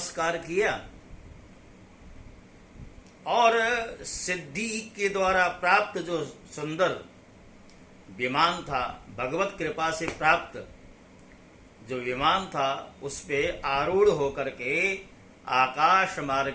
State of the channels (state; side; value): identical; both; correlation 1.00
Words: किया और सिद्धि के द्वारा प्राप्त जो सुंदर विमान था, भगवत कृपा से प्राप्त जो विमान था, उस पे आरूढ़ होकर के आकाश